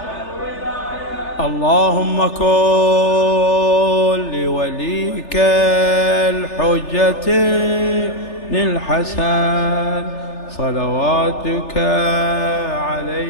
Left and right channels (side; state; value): right; late; 3.4 ms